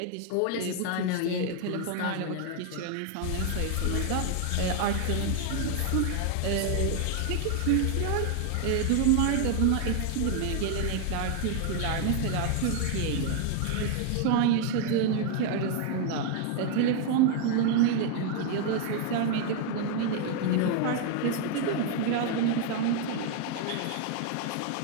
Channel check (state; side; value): different; both; correlation 0.00